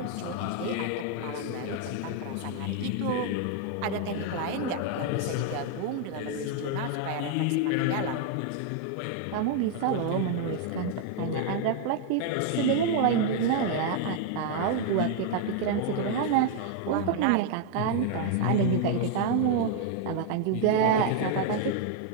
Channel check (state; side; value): different; both; correlation 0.00